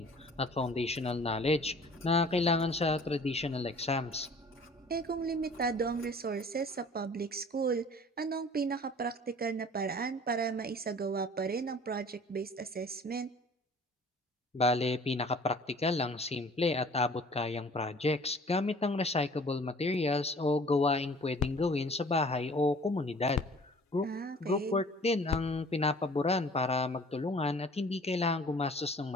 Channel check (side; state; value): both; normal; correlation 0.50